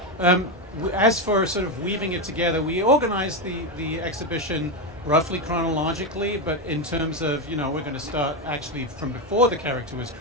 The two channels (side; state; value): both; normal; correlation 0.10